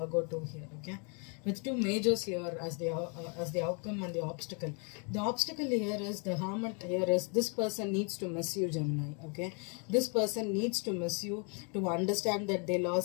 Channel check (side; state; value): right; quieter; 36.8 dB